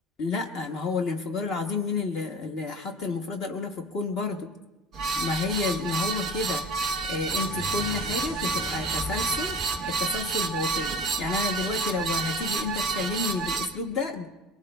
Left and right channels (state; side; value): normal; both; correlation 0.38